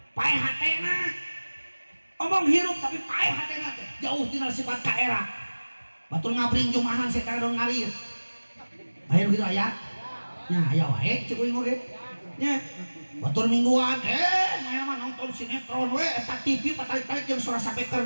paeh hatena omong hirup tapi paeh hatena teh jauh tina sifat kaera batur ngabring jumahan setan dong ngalir ayo gitu aya nya aya wae cek uing oge nya batur mingguan maya mah nonton sinetron we eta TV patarik-tarik jeung suara sapeker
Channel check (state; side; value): inverted; both; correlation -1.00